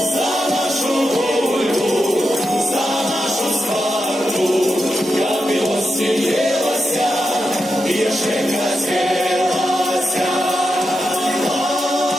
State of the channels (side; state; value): both; normal; correlation 0.87